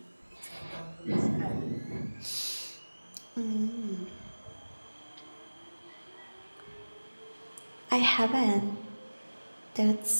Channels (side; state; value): both; inverted; correlation -1.00